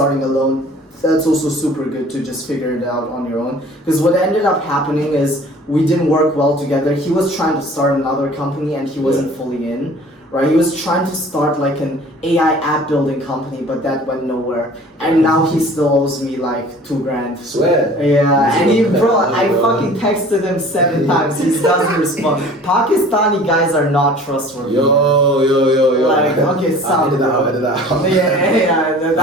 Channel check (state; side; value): normal; both; correlation 0.47